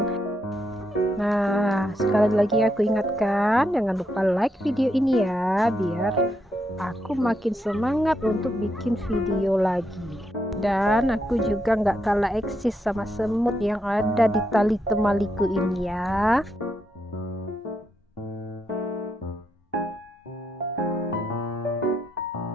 Nah, sekali lagi aku ingatkan, jangan lupa like video ini ya, biar aku makin semangat untuk bikin video lagi. Dan aku juga nggak kalah eksis sama semut yang ada di tali temaliku ini ya.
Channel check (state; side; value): normal; both; correlation 0.80